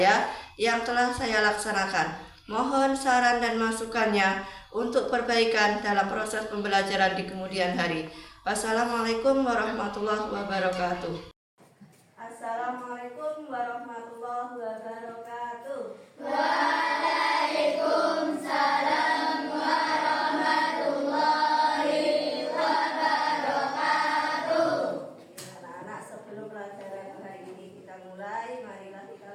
yang telah saya laksanakan. Mohon saran dan masukannya untuk perbaikan dalam proses pembelajaran di kemudian hari. Wassalamualaikum warahmatullahi wabarakatuh. Assalamualaikum warahmatullahi wabarakatuh. Waalaikumsalam warahmatullahi wabarakatuh. Anak-anak, sebelum pelajaran hari ini kita mulai, marilah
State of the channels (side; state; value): both; identical; correlation 1.00